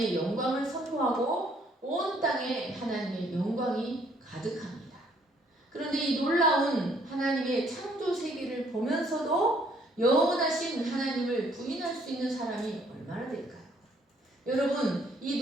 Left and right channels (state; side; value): normal; both; correlation 0.65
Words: 영광을 선포하고 온 땅에 하나님의 영광이 가득합니다. 그런데 이 놀라운 하나님의 창조 세계를 보면서도 영원하신 하나님을 부인할 수 있는 사람이 얼마나 될까요? 여러분, 이